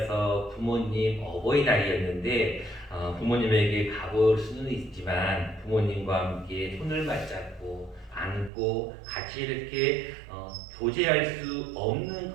부모님 어버이날이었는데 부모님에게 가볼 수는 있지만 부모님과 함께 손을 맞잡고 안고 같이 이렇게 교제할 수 없는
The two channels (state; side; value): drops out; left; at 8.5 s